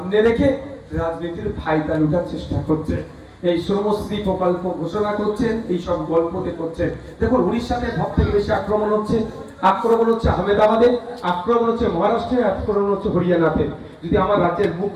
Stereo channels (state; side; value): identical; both; correlation 1.00